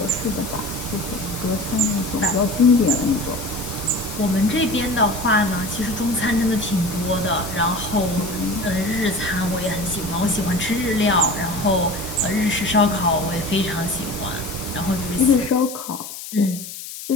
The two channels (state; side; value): noise; left; hiss, 11 dB below the sound